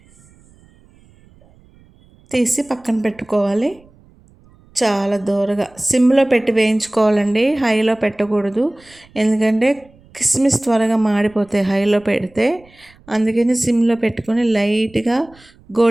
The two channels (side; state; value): right; noise; rumble, 29 dB below the sound